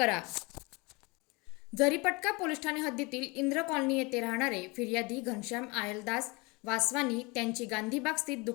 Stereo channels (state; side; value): quieter; right; 26.9 dB